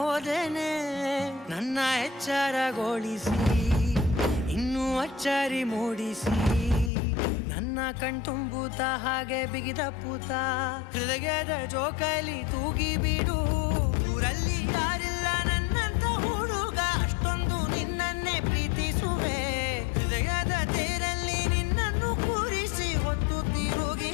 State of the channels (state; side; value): drops out; right; at 6.9 s